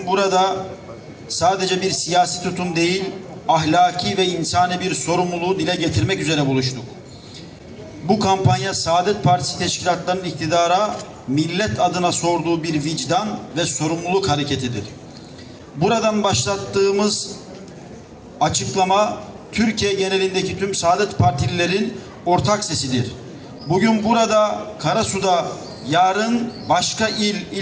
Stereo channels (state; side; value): identical; both; correlation 1.00